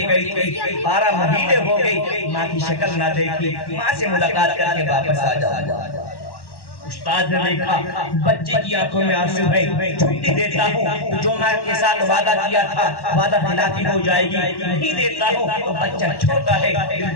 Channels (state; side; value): late; right; 1.1 ms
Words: گئی تھی, 12 مہینے ہو گئی, ماں کی شکل نہ دیکھی, ماں سے ملاقات کر کے واپس آ جاؤ. استاد نے دیکھا بچے کی آنکھوں میں آنسو ہے, چھٹی دیتا ہوں جو ماں کے ساتھ وعدہ کیا تھا وعدہ خلافی ہو جائے گی, نہیں دیتا ہوں تو بچہ چھوٹا ہے